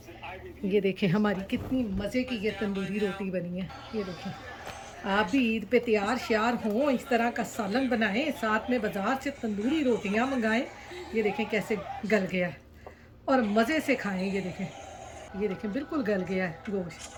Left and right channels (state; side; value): identical; both; correlation 1.00